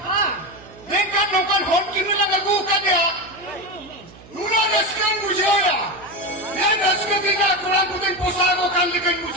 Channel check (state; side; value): noise; right; hum, 22 dB below the sound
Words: Ah. Dengan nokan hon kini lang lagu ka dia. Nuna raskan bujaya. Yan raskan kita kurang putin posago kan likan